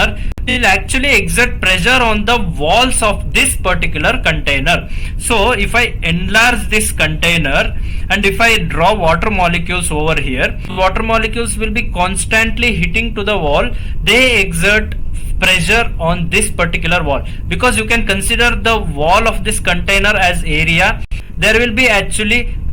will actually exert pressure on the walls of this particular container. So if I enlarge this container and if I draw water molecules over here, water molecules will be constantly hitting to the wall. They exert pressure on this particular wall, because you can consider the wall of this container as area. There will be actually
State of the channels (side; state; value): both; identical; correlation 1.00